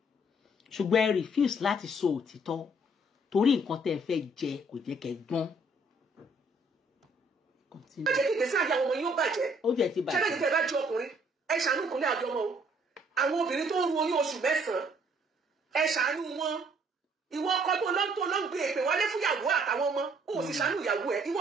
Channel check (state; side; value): normal; both; correlation 0.63